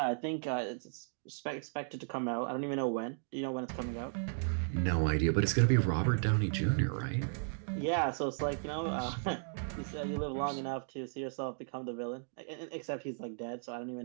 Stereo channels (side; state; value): left; silent; digital silence